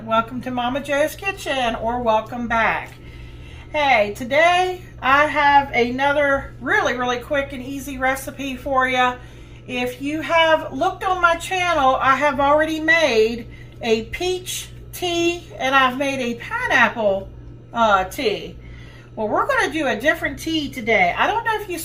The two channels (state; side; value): identical; both; correlation 1.00